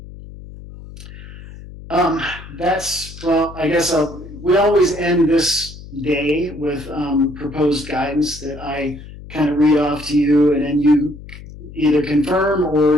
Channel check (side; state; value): left; noise; hum, 15 dB below the sound